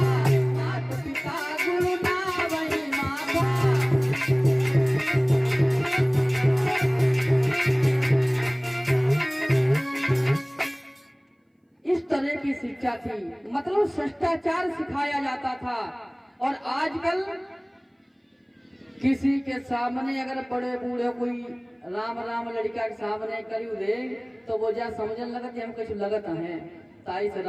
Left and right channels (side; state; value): both; identical; correlation 1.00